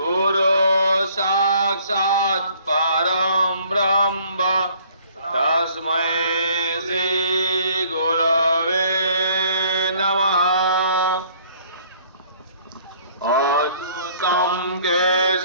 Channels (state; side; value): inverted; both; correlation -0.59